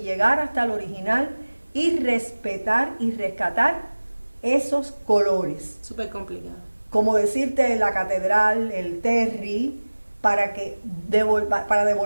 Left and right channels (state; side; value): inverted; both; correlation -1.00